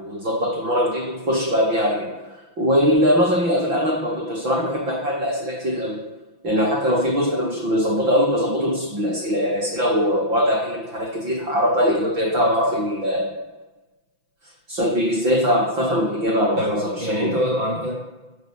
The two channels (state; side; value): late; left; 5.9 ms